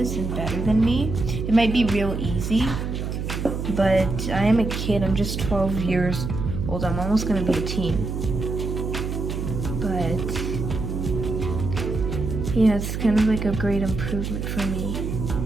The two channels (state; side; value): noise; right; hum, 3 dB below the sound